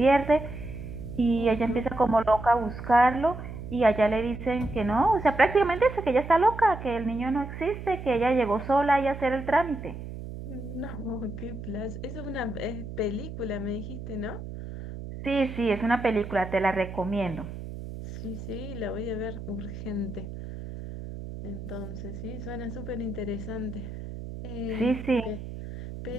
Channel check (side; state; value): right; noise; hum, 10 dB below the sound